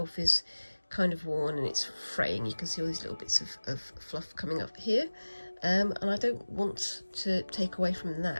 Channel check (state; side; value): inverted; both; correlation -1.00